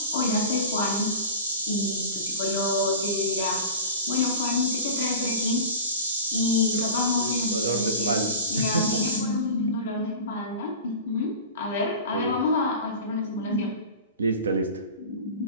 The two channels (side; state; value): both; inverted; correlation -0.34